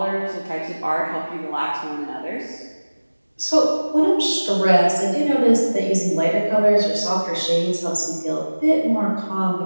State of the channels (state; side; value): inverted; both; correlation -1.00